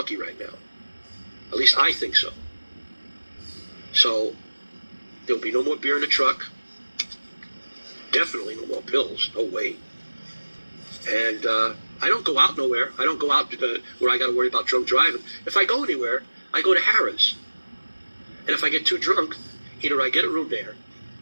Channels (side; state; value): both; inverted; correlation -1.00